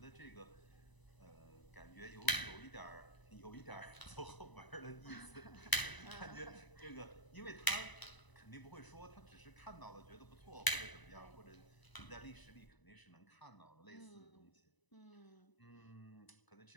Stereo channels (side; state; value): right; late; 1.0 ms